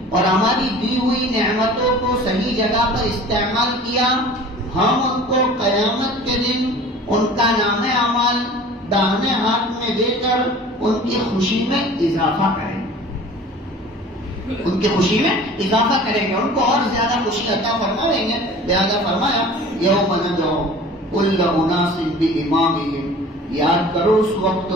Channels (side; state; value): both; normal; correlation 0.43